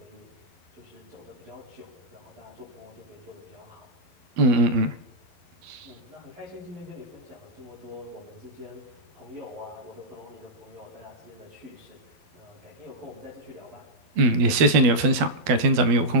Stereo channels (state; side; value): late; left; 12 ms